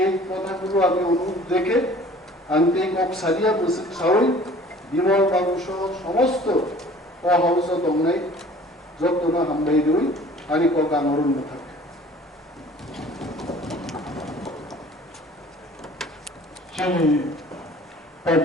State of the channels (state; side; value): normal; both; correlation 0.49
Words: কথাগুলো আমি অনুরোধ দেখে আনতে কক সারিয়া বসে সাহই বিমল বাবু সহ সমস্ত অহাউস দংনাই যত্ন হামবাই রই আনি কক আনরণ্য থাকে। সেই